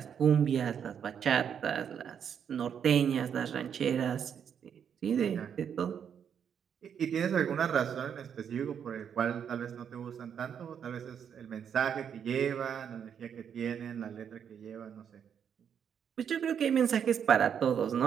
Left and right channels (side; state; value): left; quieter; 8.0 dB